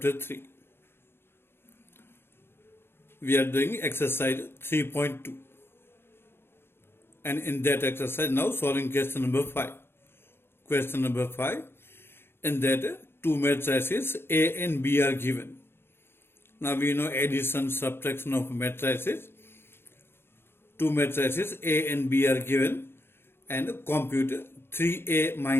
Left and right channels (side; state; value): right; late; 0.11 ms